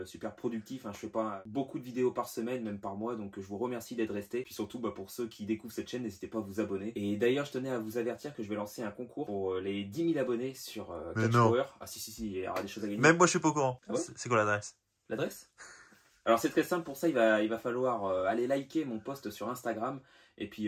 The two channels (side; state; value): both; identical; correlation 1.00